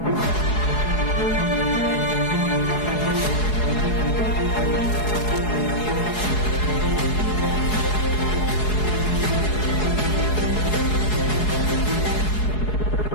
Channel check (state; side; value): late; right; 4.7 ms